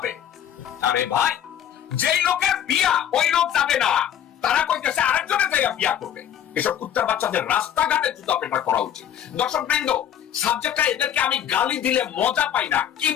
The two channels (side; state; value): right; quieter; 9.9 dB